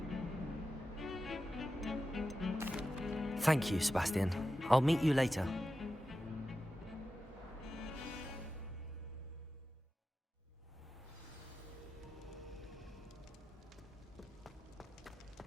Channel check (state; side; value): normal; both; correlation 0.92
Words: Thank you, Sebastian. I'll meet you later.